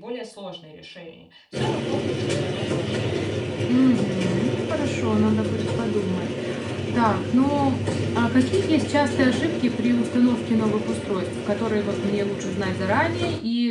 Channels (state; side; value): identical; both; correlation 1.00